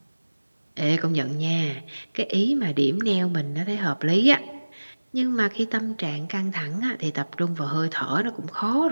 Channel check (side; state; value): both; inverted; correlation -1.00